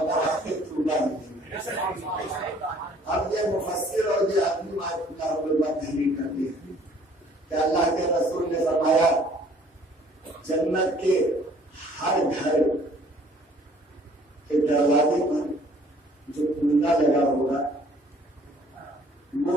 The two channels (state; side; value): normal; both; correlation 0.57